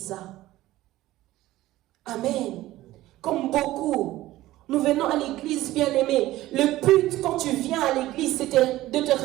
Amen. Comme beaucoup, Nous venons à l'église, bien-aimé. Le but, quand tu viens à l'église, c'est de te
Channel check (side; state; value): left; quieter; 16.1 dB